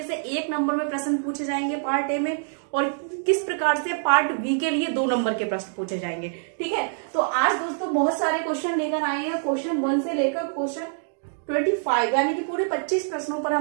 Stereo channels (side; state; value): left; silent; digital silence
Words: से 1 नंबर में प्रश्न पूछे जाएंगे पार्ट ए में, और किस प्रकार से पार्ट बी के लिए 2 नंबर के प्रश्न पूछे जाएंगे। ठीक है, तो आज दोस्तों बहुत सारे क्वेश्चन लेकर आए हैं, क्वेश्चन 1 से लेकर क्वेश्चन 25 यानी कि पूरे 25 प्रश्नों पर